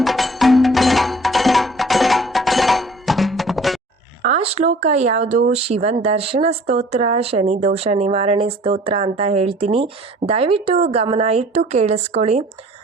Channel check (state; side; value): normal; both; correlation 0.51